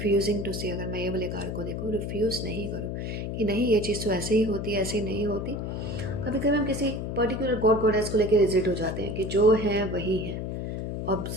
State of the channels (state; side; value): noise; left; hum, 4 dB below the sound